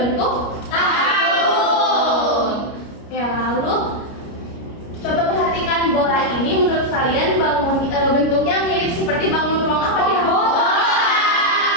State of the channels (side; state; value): right; late; 29 ms